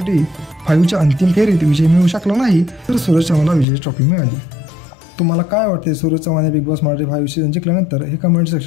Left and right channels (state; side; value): drops out; right; at 3.7 s